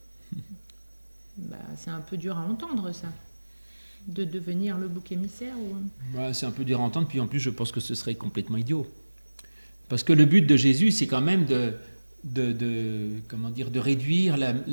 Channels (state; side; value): inverted; both; correlation -1.00